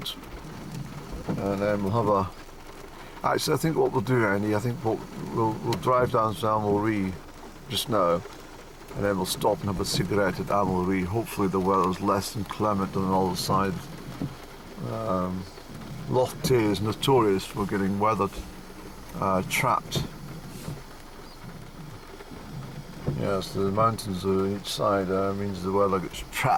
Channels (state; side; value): identical; both; correlation 1.00